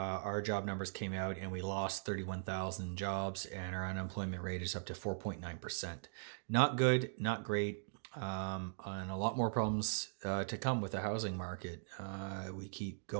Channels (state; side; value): silent; left; digital silence